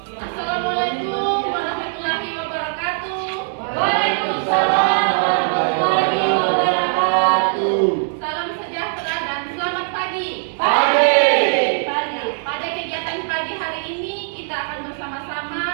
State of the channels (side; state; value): left; silent; digital silence